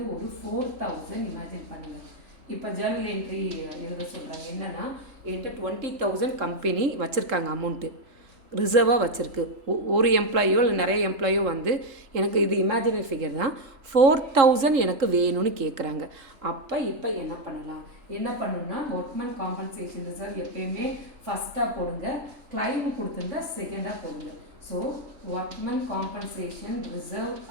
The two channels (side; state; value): left; late; 3.7 ms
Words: ஒரு 4,000 இமேஜின் பண்ணுங்கள். இப்போ ஜேர்னல் என்ட்ரி எழுத சொல்கிறாங்க. என்னென்னா என்கிட்ட 20,000 கம்பெனி வச்சுருக்காங்க, அமௌண்ட்டு ரிசர்வாக வச்சுருக்கு. ஒரு எம்ப்ளாயோ இல்லை நிறைய எம்ப்ளாயோ வந்து எனக்கு இது இமேஜினரி ஃபிகர் தான், 4,000 எனக்கு வேணும்னு கேட்குறாங்க. அப்போ இப்போ என்ன பண்ணணும்னா ஒர்க்மேன் காம்பன்சேஷன் ரிசர்வ் எப்பயுமே ஃபஸ்ட்டாக போடுங்க, கிளைம் கொடுத்துருந்தா செகண்டாக போடுங்க. So workman compensation reserve